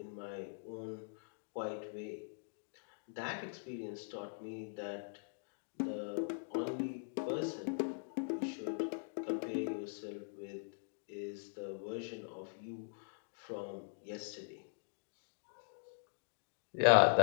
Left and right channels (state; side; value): silent; right; digital silence